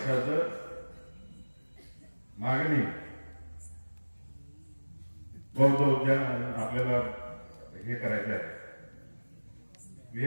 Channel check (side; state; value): both; inverted; correlation -1.00